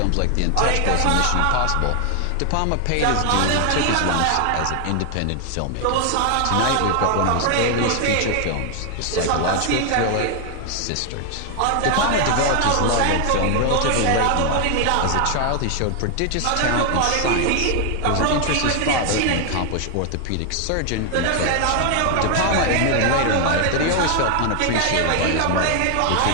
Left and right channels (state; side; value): different; both; correlation 0.00